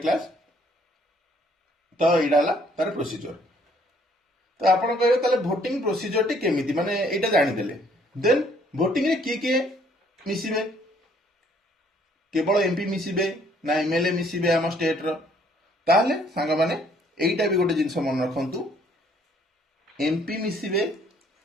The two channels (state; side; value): normal; both; correlation 0.63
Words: କ୍ଲାସ। ତ ଏଇଟା ହେଲା ତାର ପ୍ରୋସିଜର। ତ ଆପଣ କହିବେ ତାହେଲେ ଭୋଟିଂ ପ୍ରୋସିଜରଟି କେମିତି, ମାନେ ଏଇଟା ଜାଣିଦେଲେ, ଦେନ୍ ଭୋଟିଂରେ କିଏ କିଏ ମିଶିବେ? କେବଳ ଏମପି ମିଶିବେ ନା ଏମଏଲଏ ମିଶିବେ ଆମ ଷ୍ଟେଟର? ତାହେଲେ ସାଙ୍ଗମାନେ এইটা ବି ଗୋଟେ ଜିନିଷ ମନେ ରଖନ୍ତୁ, ଏମପି ମିଶିବେ